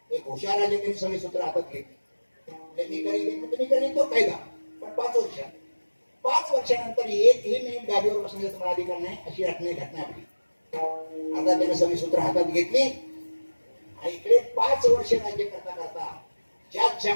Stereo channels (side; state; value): both; inverted; correlation -1.00